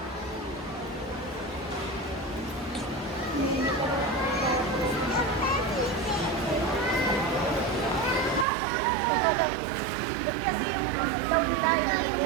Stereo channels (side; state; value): left; drops out; at 8.5 s